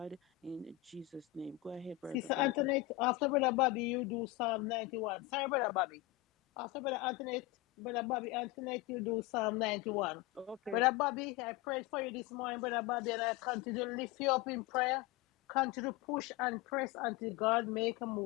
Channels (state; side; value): quieter; right; 18.3 dB